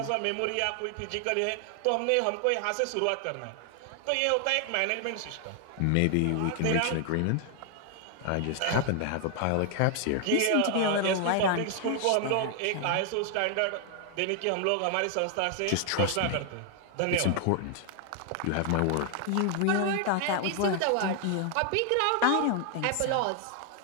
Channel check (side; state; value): both; different; correlation 0.00